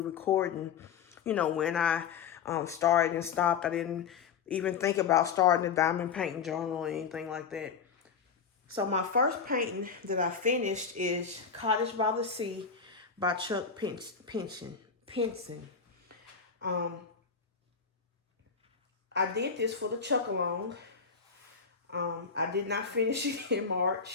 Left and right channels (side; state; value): right; quieter; 6.2 dB